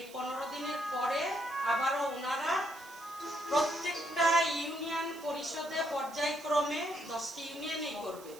15 দিনের পরে আবারও ওনারা প্রত্যেকটা ইউনিয়ন পরিষদে পর্যায়ক্রমে 10টি ইউনিয়নেই করবে।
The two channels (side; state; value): right; noise; hiss, 19 dB below the sound